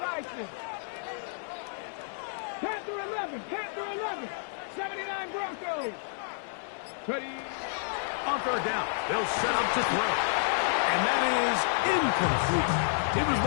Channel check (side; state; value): right; silent; 58 dB below the other